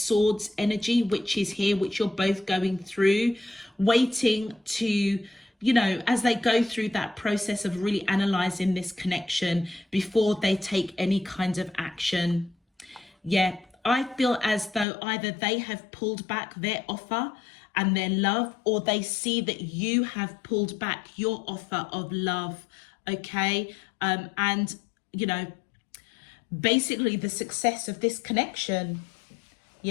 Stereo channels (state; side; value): drops out; right; at 14.9 s